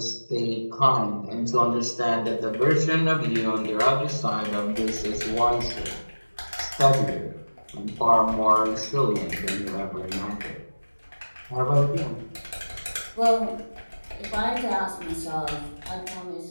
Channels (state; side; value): inverted; both; correlation -1.00